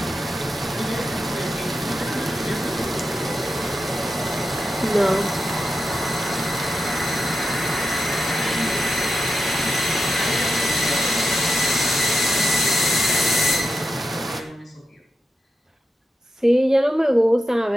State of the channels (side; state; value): both; normal; correlation 0.89